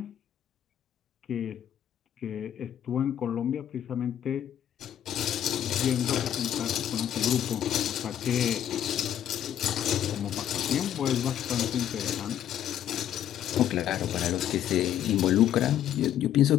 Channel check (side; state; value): right; quieter; 10.6 dB